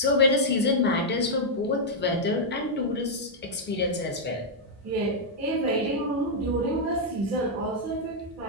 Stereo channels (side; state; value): both; normal; correlation -0.05